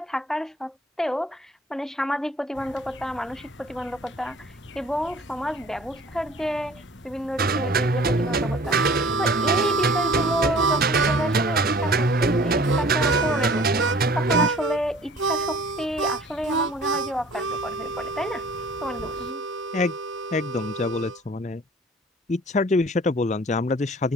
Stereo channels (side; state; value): both; normal; correlation 0.49